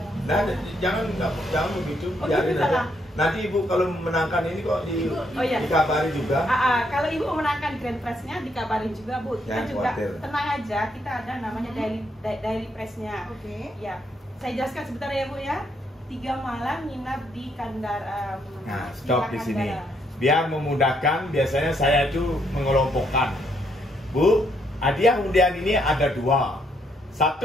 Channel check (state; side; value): normal; both; correlation 0.74